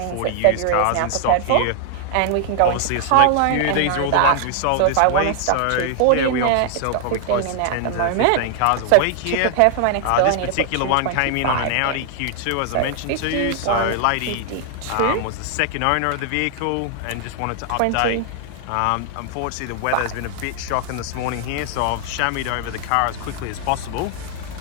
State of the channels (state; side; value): different; both; correlation 0.00